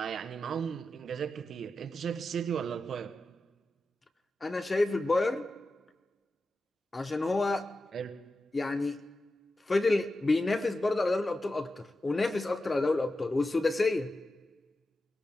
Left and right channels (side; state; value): both; normal; correlation 0.91